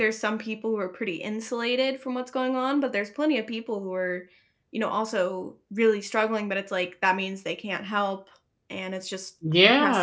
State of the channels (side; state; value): both; identical; correlation 1.00